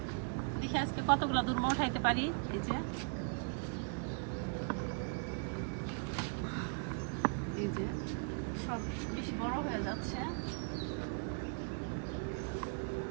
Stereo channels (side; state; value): left; quieter; 37.9 dB